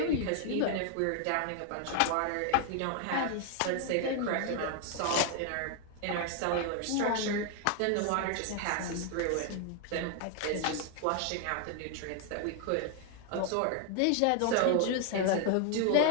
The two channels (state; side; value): different; both; correlation 0.00